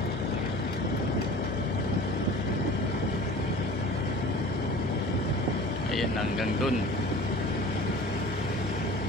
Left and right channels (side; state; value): both; normal; correlation 0.41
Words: Ayan, hanggang dun.